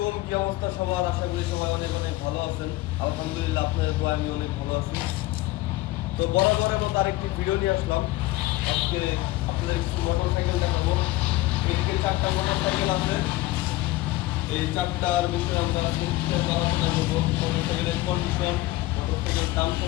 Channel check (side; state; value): right; quieter; 18.0 dB